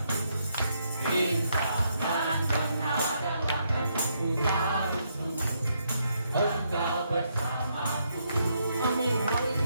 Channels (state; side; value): inverted; both; correlation -0.76